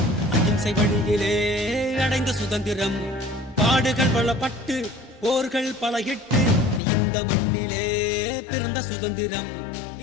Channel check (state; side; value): drops out; right; at 6.8 s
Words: அகிம்சை வழியிலே அடைந்த சுதந்திரம், பாடுகள் பல பட்டு போர்கள் பல இட்டு இந்த மண்ணிலே பிறந்த சுதந்திரம்.